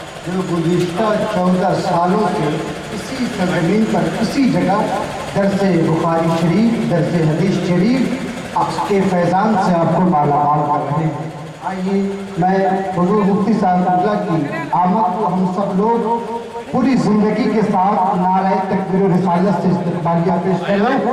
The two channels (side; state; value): both; identical; correlation 1.00